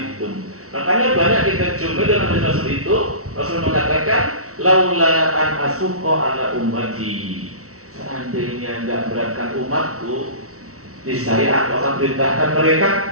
Makanya banyak kita jumpa dalam hadis Rasul itu, Rasul mengatakan laula an asuqa ala ummati. Seandainya enggak beratkan umatku, niscaya aku akan perintahkan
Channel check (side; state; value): left; late; 0.64 ms